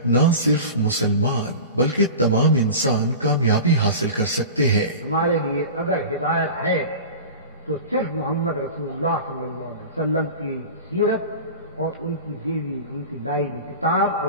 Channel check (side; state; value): both; inverted; correlation -0.33